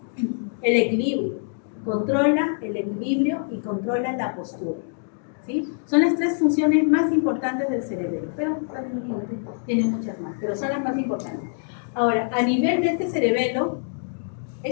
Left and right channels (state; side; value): silent; right; digital silence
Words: El equilibrio. Controla el equilibrio y controla la postura. ¿Sí? Son las tres funciones más importantes del cerebelo, pero tiene muchas más, pero son las más importantes. Ahora, a nivel de este cerebelo,